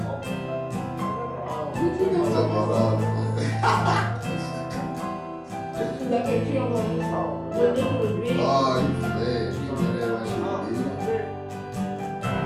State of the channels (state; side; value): identical; both; correlation 1.00